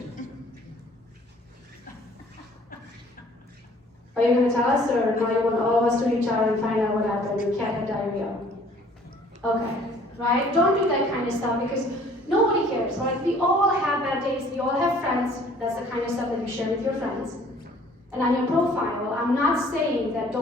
Are you going to tell us, or now you want all of us to reach out and find out what happened? Your cat had diarrhea. Okay, right? Don't do that kind of stuff because nobody cares, right? We all have bad days. We all have friends. That's the kind of stuff that you share with your friends. And on your profile, I'm not saying that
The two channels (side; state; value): both; normal; correlation 0.55